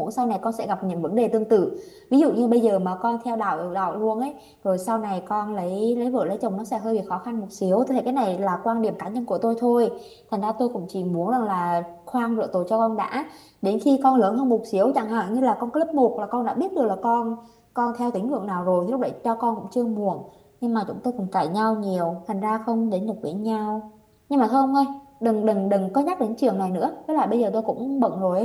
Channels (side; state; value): both; identical; correlation 1.00